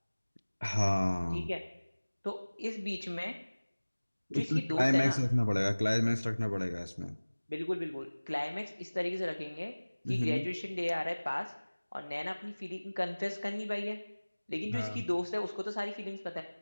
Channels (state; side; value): inverted; both; correlation -1.00